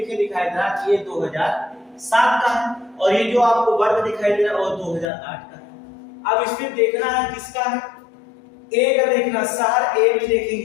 दिखाई दे रहा है, ये 2007 का है, और ये जो आपको वर्ग दिखाई दे रहा है वो 2008 का है। अब इसमें देखना है किसका है, ए का देखना, शहर ए में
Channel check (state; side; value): drops out; right; at 5.1 s